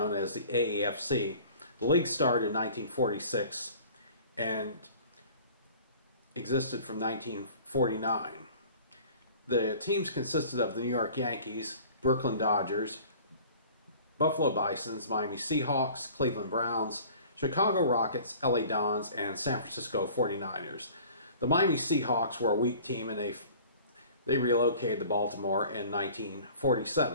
as the AAFC. The league started in 1946 and existed from 1949. The teams consisted of the New York Yankees, Brooklyn Dodgers, Buffalo Bisons, Miami Seahawks, Cleveland Browns, Chicago Rockets, LA Dons, and San Francisco 49ers. The Miami Seahawks were a weak team, and they relocated to Baltimore in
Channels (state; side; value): inverted; both; correlation -0.46